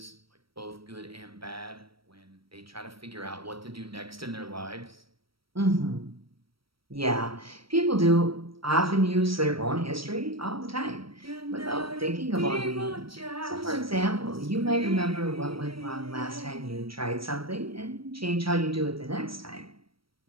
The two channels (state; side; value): late; left; 0.75 ms